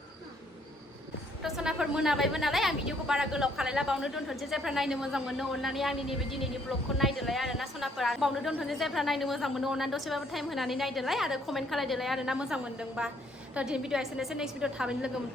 दसनाफोर मोनाबायबो नालाय आं भिडिअखौ बारा गोलाव खालायला बावनो दोनथ'नोसै जायफ्रा नायनो मोजां मोनो अननानै आंनि नैबे दिनैनि ब्लगखौ नायदोलाय आरोना सनाफोरा बावनो दोनथ'नोसै जायफ्रा नायनो मोजां मोनो अननानै दसेबाबो टाइम होनानै नायदोलाय आरो कमेन्ट खालायदोलाय आरोना मोजां मोनदोंबा थ' दिनै भिडिअ एसेनोसै नेक्स्ट भिडिअ थाबैनो लोगो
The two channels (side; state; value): both; normal; correlation 0.66